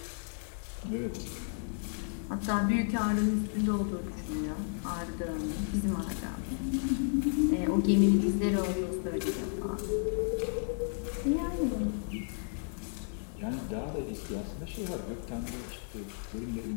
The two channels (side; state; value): right; silent; digital silence